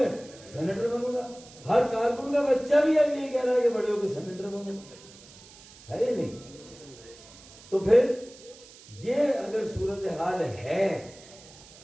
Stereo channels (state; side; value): noise; right; hiss, 21 dB below the sound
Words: सेनेटर बनूंगा। हर कारकुन का बच्चा भी अब यही कह रहा है कि बड़े होके सेनेटर बनूंगा, है या नहीं? तो फिर ये अगर सूरत हाल है,